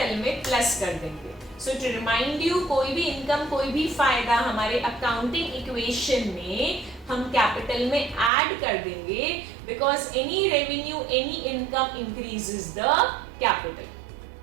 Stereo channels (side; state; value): left; drops out; at 8.3 s